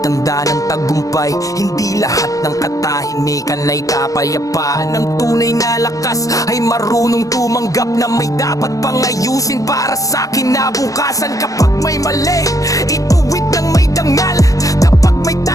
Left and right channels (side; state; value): right; late; 0.16 ms